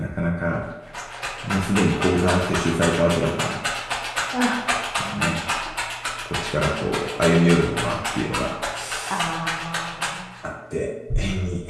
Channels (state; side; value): identical; both; correlation 1.00